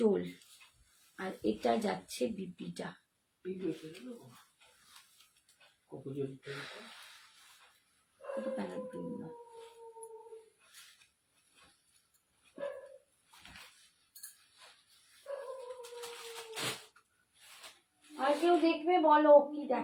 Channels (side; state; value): both; identical; correlation 1.00